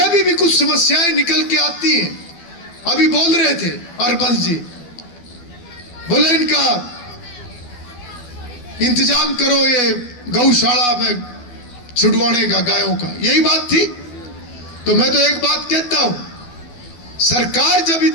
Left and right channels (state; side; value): late; right; 12 ms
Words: भी कुछ समस्याएं निकल के आती हैं। अभी बोल रहे थे हरबंस जी, बोले इनका इंतजाम करो ये गौशाला में छुड़वाने का, गायों का, यही बात थी। तो मैं तो एक बात कहता हूं, सरकार जब